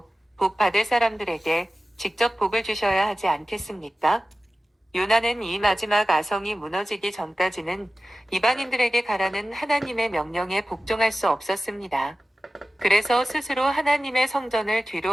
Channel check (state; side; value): normal; both; correlation 0.95